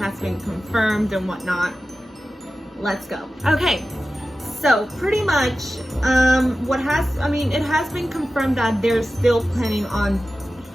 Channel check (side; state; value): both; normal; correlation 0.94